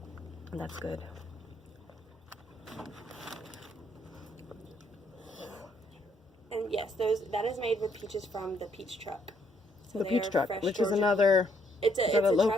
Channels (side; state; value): both; normal; correlation 0.70